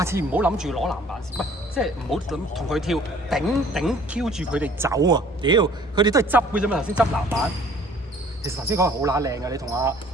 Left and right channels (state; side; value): normal; both; correlation 0.54